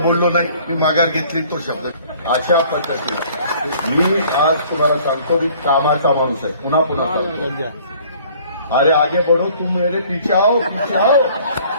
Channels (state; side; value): inverted; both; correlation -0.55